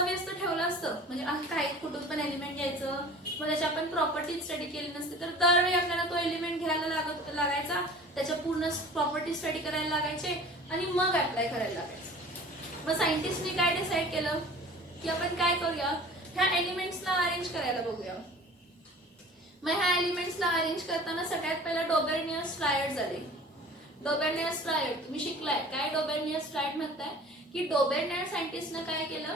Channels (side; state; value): both; normal; correlation 0.43